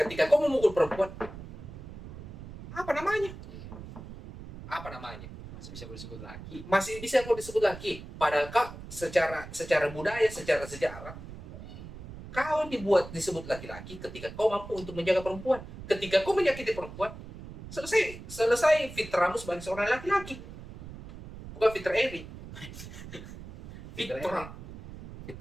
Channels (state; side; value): noise; right; rumble, 13 dB below the sound